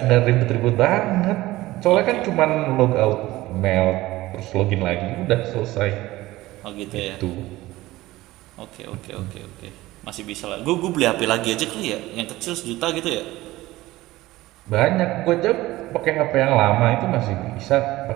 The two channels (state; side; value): quieter; left; 17.8 dB